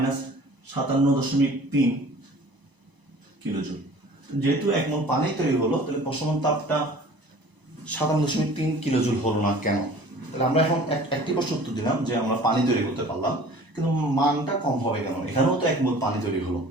কিলোজুল। যেহেতু 1 মোল পানি তৈরি হলো, তাহলে প্রশমন তাপটা 57.3 কিলোজুল হলো না কেন? তাহলে আমরা এখন একটি প্রশ্ন উত্তর দিলাম যে আমরা পানি তৈরি করতে পারলাম, কিন্তু মানটা কম হবে কেন? এখানেও তো 1 মোল পানি তৈরি হলো।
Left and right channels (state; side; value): late; left; 1.0 ms